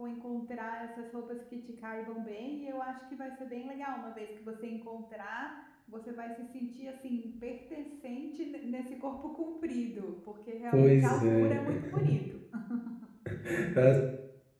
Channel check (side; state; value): both; identical; correlation 1.00